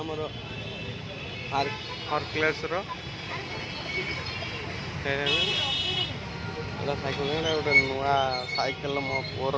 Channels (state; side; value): identical; both; correlation 1.00